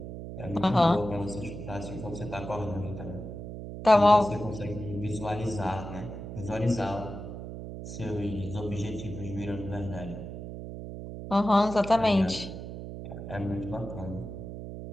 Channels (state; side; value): noise; right; hum, 9 dB below the sound